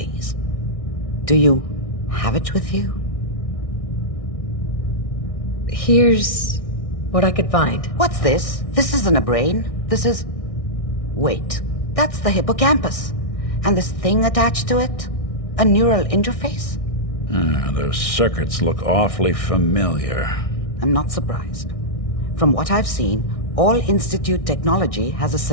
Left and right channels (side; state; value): right; late; 1.6 ms